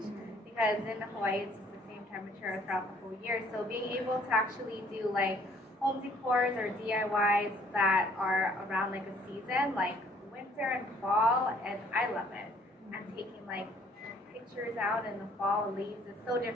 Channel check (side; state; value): both; normal; correlation 0.60